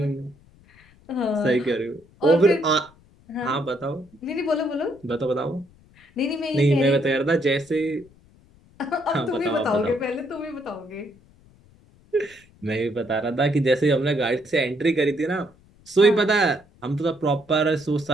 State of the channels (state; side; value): noise; left; rumble, 28 dB below the sound